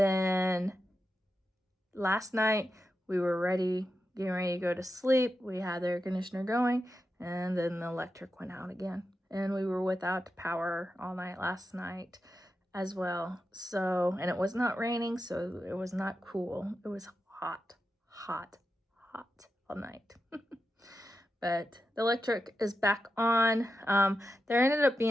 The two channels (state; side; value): normal; both; correlation 0.89